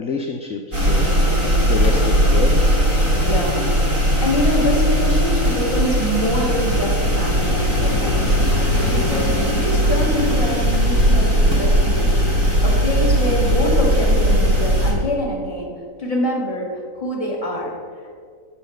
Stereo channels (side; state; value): left; late; 3.9 ms